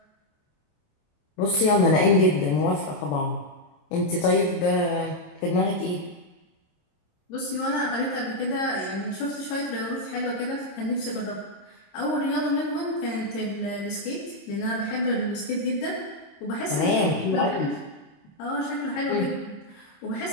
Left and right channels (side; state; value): right; late; 27 ms